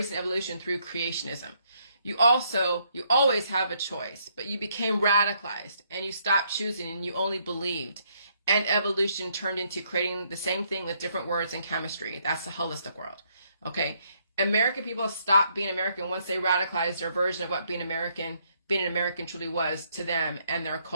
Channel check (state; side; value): inverted; both; correlation -0.72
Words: evolution through creationism. You always have a choice, but you became radicalized and you stopped choosing and you only believed. And evolution turned into creating the same thing with different words and chemistry. That's the holistic world. Okay. American people stopped being American once they radicalized their version of what being an American truly was to them and their